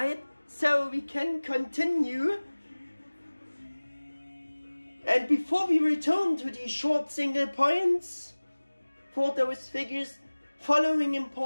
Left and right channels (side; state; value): both; inverted; correlation -1.00